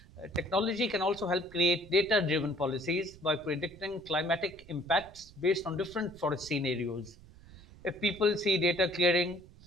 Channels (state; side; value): noise; right; rumble, 21 dB below the sound